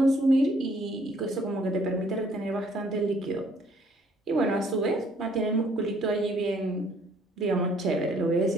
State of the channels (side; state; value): both; normal; correlation 0.63